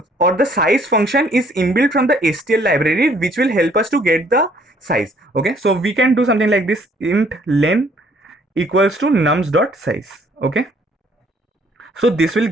or the size function is inbuilt from the STL library, which will help us to get the size. Okay, so we can do something like this: int len equals to nums.size. Okay, so this will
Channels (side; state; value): both; normal; correlation 0.62